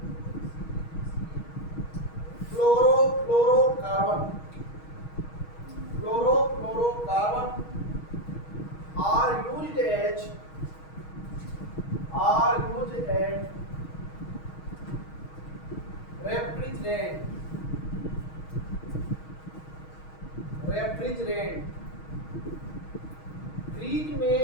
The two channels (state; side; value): late; right; 6.3 ms